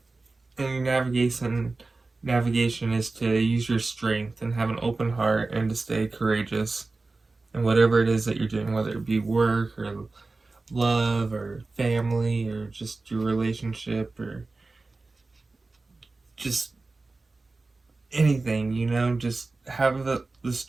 and your navigation is to use your strength and have an open heart and to stay courageous in whatever it is that you're doing, whether it be work or love or family or just your relationship or just anything, just have the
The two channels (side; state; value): left; quieter; 3.5 dB